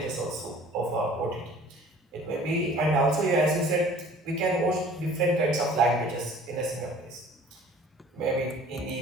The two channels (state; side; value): normal; both; correlation 0.50